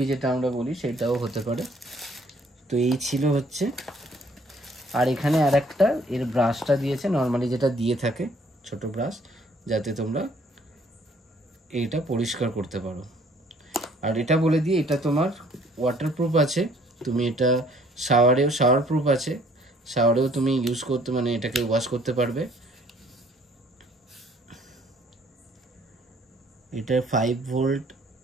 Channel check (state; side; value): normal; both; correlation 0.61